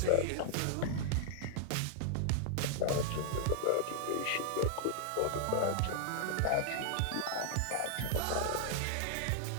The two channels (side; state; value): both; different; correlation -0.01